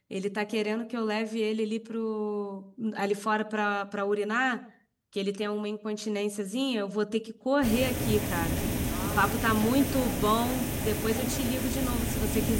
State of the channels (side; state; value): both; identical; correlation 1.00